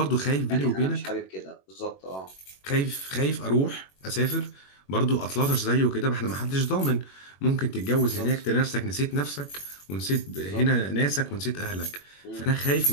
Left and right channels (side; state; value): right; late; 21 ms